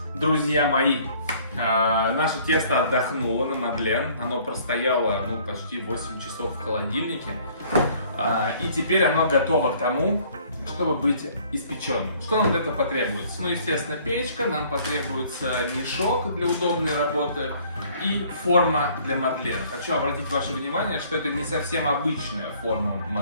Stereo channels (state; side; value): inverted; both; correlation -0.57